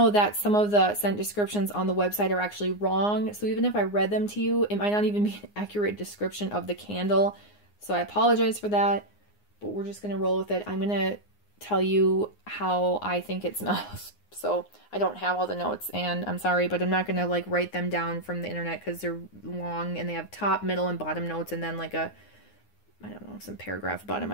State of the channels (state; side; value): late; right; 9.7 ms